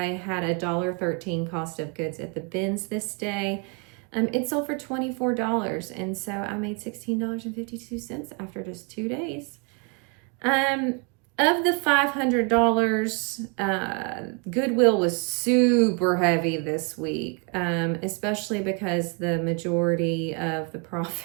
had a $1.13 cost of goods at the bins this day. It sold for $24, and so I made $16.52 after just 2 days. Of the $500, Goodwill was super heavy this week, especially because the majority of the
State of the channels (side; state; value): left; quieter; 34.4 dB